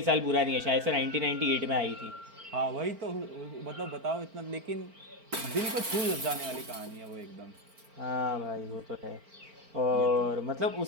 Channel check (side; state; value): left; late; 4.4 ms